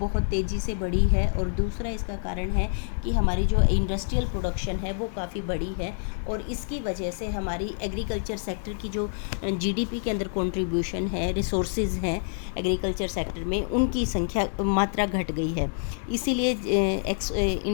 तेज़ी से बढ़ी है और दूसरा इसका कारण है कि हमारी जो इंडस्ट्रियल प्रोडक्शन है वो काफ़ी बड़ी है और इसकी वजह से हमारी एग्रीकल्चर सेक्टर की जो जीडीपी के अंदर कंट्रीब्यूशन है, रिसोर्सेज हैं एग्रीकल्चर सेक्टर में, उनकी संख्या, मात्रा घट गई है। इसीलिए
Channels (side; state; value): right; silent; digital silence